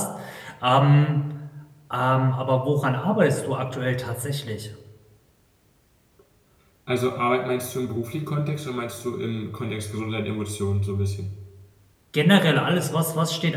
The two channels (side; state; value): both; identical; correlation 1.00